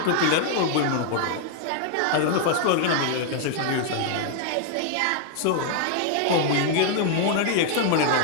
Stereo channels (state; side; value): different; both; correlation 0.00